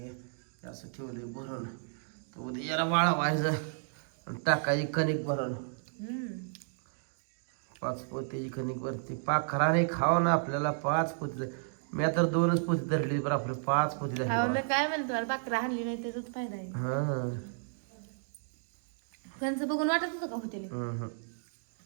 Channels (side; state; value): left; silent; digital silence